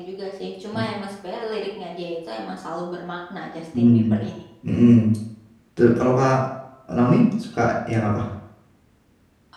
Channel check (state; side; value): identical; both; correlation 1.00